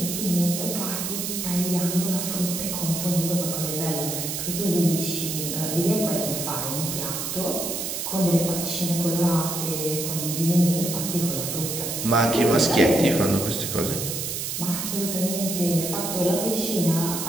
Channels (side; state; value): right; noise; hiss, 3 dB below the sound